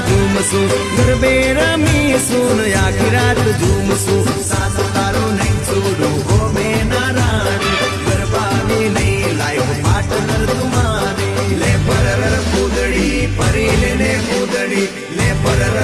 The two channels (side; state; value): both; identical; correlation 1.00